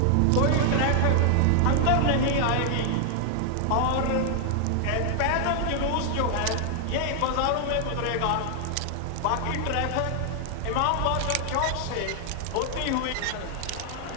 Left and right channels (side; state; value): both; different; correlation 0.00